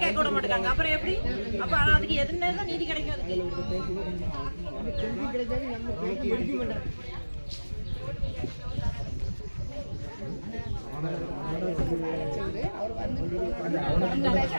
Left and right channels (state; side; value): inverted; both; correlation -1.00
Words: கேட்க விட மாட்டாங்க. அப்புறம் எப்படி? அப்ப அதுக்கு எதுன்னு தான் நீதி கிடைக்கும்?